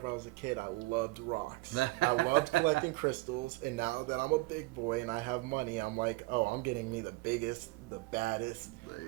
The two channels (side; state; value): left; quieter; 22.6 dB